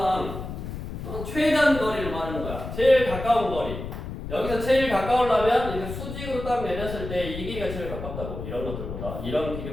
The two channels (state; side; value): noise; left; rumble, 8 dB below the sound